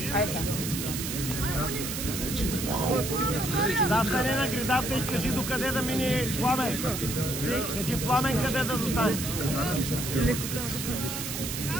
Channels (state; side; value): noise; right; hiss, 5 dB below the sound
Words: Да, стане на гредата и кажи докъде да мине Пламен. Кажи Пламен къде да застане.